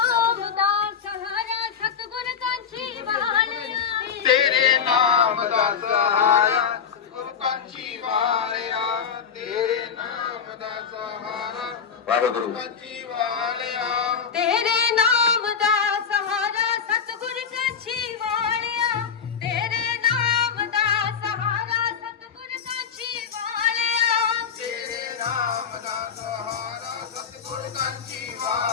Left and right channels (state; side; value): quieter; right; 7.0 dB